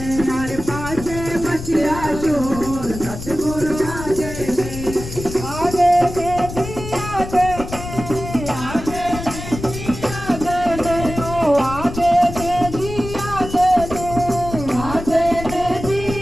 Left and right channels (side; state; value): left; noise; rumble, 9 dB below the sound